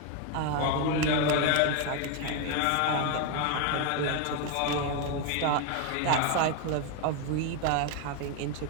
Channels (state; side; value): different; both; correlation 0.01